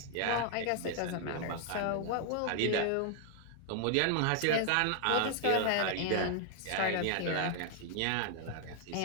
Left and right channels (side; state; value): both; different; correlation 0.00